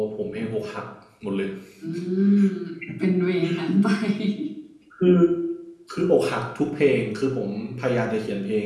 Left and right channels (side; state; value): both; identical; correlation 1.00